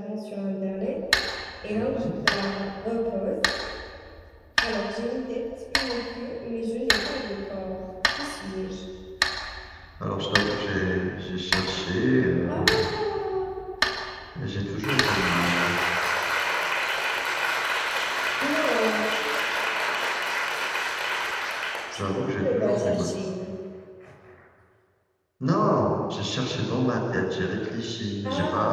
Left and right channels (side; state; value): both; identical; correlation 1.00